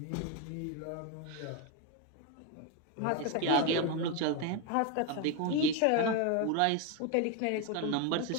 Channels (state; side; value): different; both; correlation 0.02